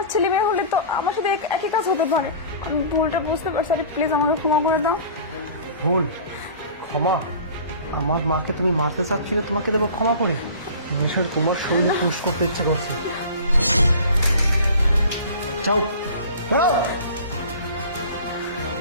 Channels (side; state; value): both; inverted; correlation -0.42